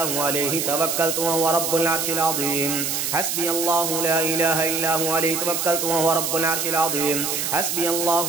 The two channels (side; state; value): right; noise; hiss, 1 dB below the sound